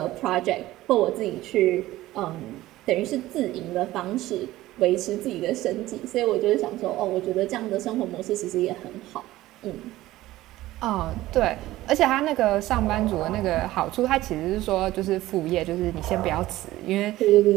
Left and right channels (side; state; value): left; quieter; 16.3 dB